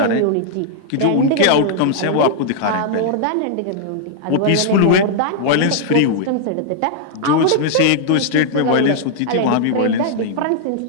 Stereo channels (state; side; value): different; both; correlation -0.01